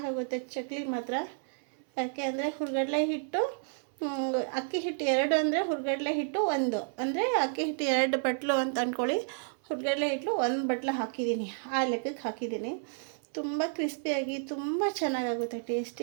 ಚಕ್ಲಿ ಮಾತ್ರ. ಯಾಕೆ ಅಂದರೆ ಹುರ್ಗಡ್ಲೆ ಹಿಟ್ಟು, ಅಕ್ಕಿ ಹಿಟ್ಟು 2 ಅಂದರೆ ಹುರ್ಗಡ್ಲೆ ಹಿಟ್ಟು 1 ಅಂದರೆ ಅಕ್ಕಿ ಹಿಟ್ಟು 2 ಬಟ್ಲು ಅಂತ ಅಂದ್ಕೊಳ್ಳಿ. ಹುರ್ಗಡ್ಲೆ ಹಿಟ್ಟು 1 ಬಟ್ಲು ಹಾಕಿದ್ದೀನಿ. ಆ ಲೆಕ್ಕಕ್ಕೆ ಹಾಕಿದ್ದೀನಿ. ತುಂಬ ಕ್ರಿಸ್ಪಿಯಾಗಿ ತುಂಬ ಚೆನ್ನಾಗಾಗುತ್ತೆ,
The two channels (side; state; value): left; silent; 57 dB below the other